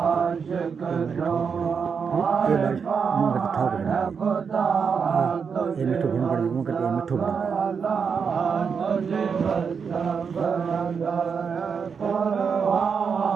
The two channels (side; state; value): left; quieter; 6.2 dB